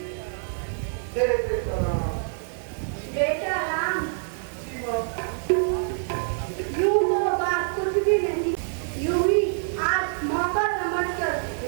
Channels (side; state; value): left; silent; digital silence